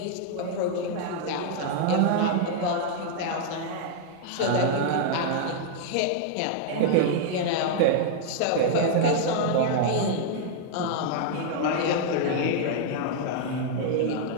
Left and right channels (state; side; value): different; both; correlation -0.01